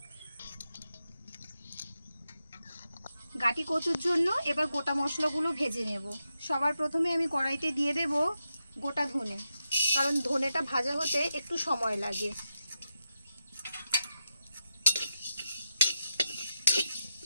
গাটি কচুর জন্য এবার গোটা মশলাগুলো ভেজে নেব। সবার প্রথমে আমি কড়াইতে দিয়ে দেব গোটা ধনে, কারণ ধনেটা ভাজা হতে একটু সময় লাগে।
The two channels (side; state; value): both; inverted; correlation -0.88